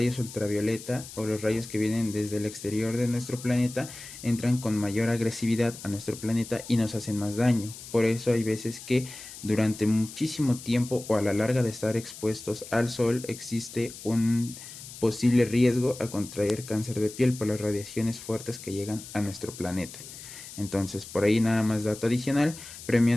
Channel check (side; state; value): left; noise; hiss, 14 dB below the sound